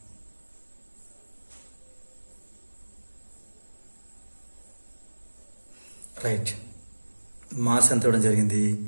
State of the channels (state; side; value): inverted; both; correlation -1.00